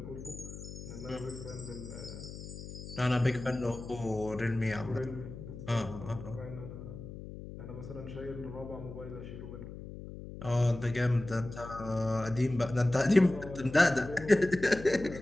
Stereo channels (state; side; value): noise; left; hum, 11 dB below the sound